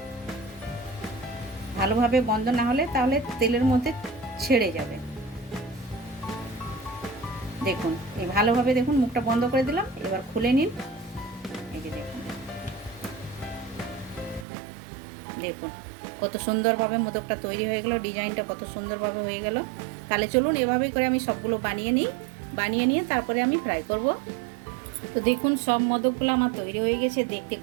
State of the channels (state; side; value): drops out; left; at 14.5 s